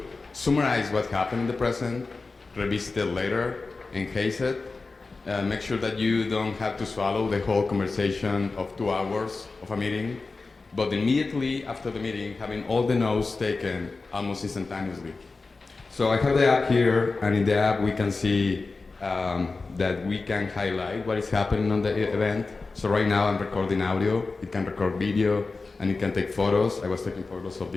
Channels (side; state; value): right; quieter; 3.9 dB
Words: summarize what happened in the present, revisit it later, enhance it, make sure that you don't have to swallow the whole conversation of 2 hours of a meeting, but immediately after the meeting, having all the notes taken almost instantaneously. So I have the app here, and in the app we can see that we can highlight what is happening on the event. So right now I'm recording audio, it can record video, and it can take photos. I was taking photos of